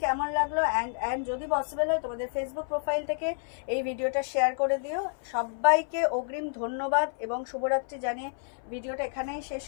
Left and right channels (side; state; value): right; silent; 58 dB below the other